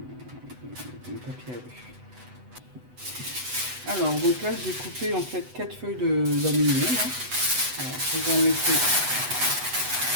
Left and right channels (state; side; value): late; left; 8.0 ms